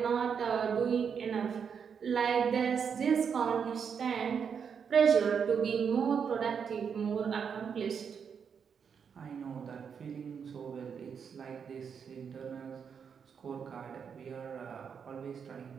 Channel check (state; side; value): quieter; left; 6.8 dB